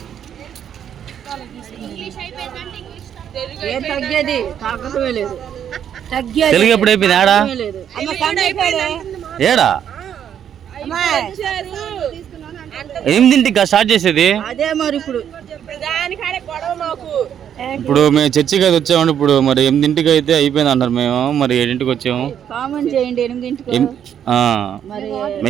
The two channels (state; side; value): quieter; left; 9.2 dB